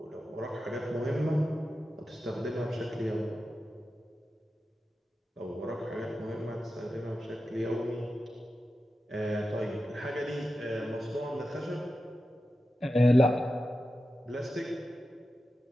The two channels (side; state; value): both; normal; correlation 0.92